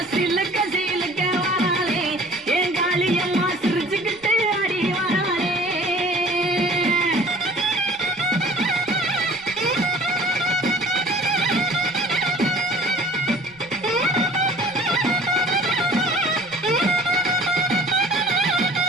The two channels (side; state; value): right; noise; rumble, 29 dB below the sound